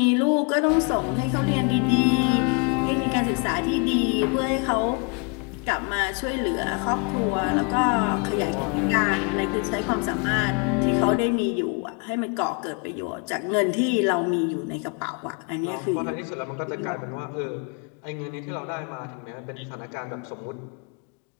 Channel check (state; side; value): quieter; right; 35.1 dB